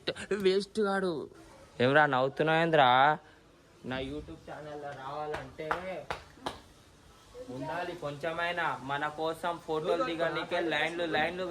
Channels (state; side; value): identical; both; correlation 1.00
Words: వేస్ట్ కాడు. ఏమరా నవ్వుతున్నావేంద్రా? నా యూట్యూబ్ ఛానల్లో రావాలంటే ఉండాలి కొంచెమైనా. మన కోసం ఫోటోలు దిగడానికే లైన్లు